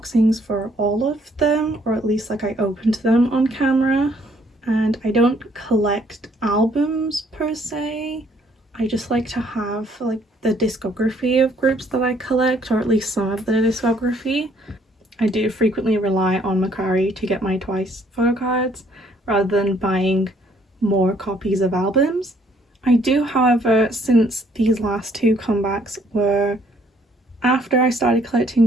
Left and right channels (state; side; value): normal; both; correlation 0.64